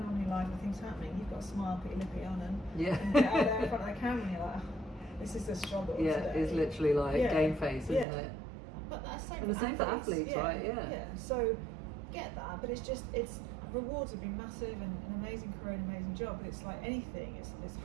on in your life and things happening. You've got to smile, put your lippy on, and get out there in front of the camera. And you're like, this is the struggle. Today. It's literally like game face, isn't it? But that's the same for athletes, right? Yeah. So get that, but it's rewards have been massive, and an amazing career, an amazing job. But it's like anything, it's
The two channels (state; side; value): drops out; left; at 8.1 s